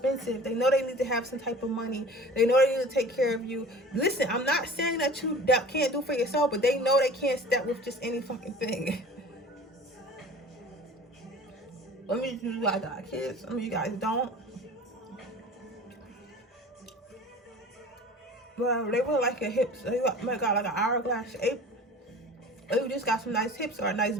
They know they need to have some type of money. They know they need to take care of you. Listen, I'm not saying that you can't do for yourself, but they know they can't step with just any fucking thing. Let me do, I got kids. Some of you guys don't. Well, they really like your hips. They might got like an hourglass shape. Or you just got some nice hips, or a nice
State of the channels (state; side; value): normal; both; correlation 0.42